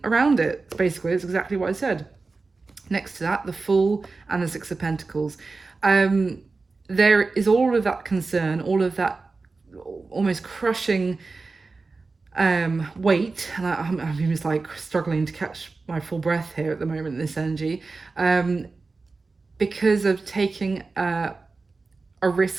around it. Basically, it's exactly what I said. Next to that, the Fool and the 6 of Pentacles. There is all of that concern, all of that almost crushing weight, and I'm just like struggling to catch my full breath here at the moment in this energy, because of taking a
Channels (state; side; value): quieter; left; 3.9 dB